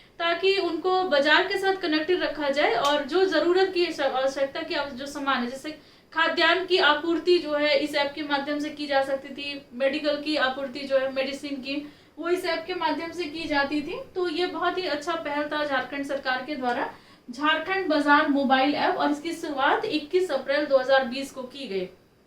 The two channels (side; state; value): both; identical; correlation 1.00